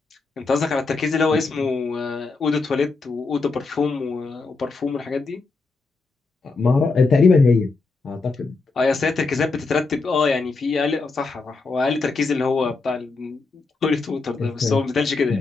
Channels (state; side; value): quieter; right; 3.9 dB